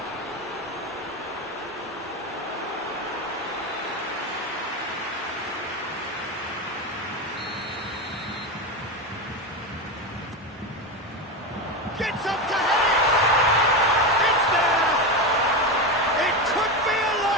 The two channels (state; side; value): normal; both; correlation 0.16